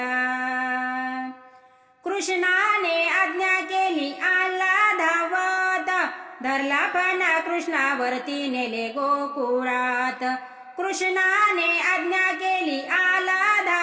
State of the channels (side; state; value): both; identical; correlation 1.00